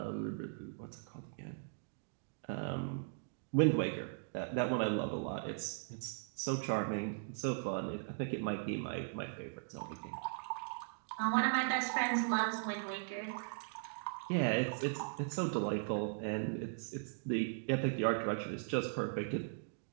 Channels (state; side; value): silent; left; digital silence